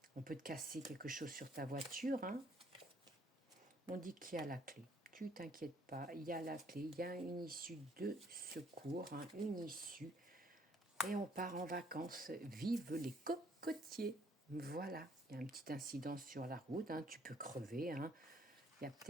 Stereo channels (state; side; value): normal; both; correlation 0.65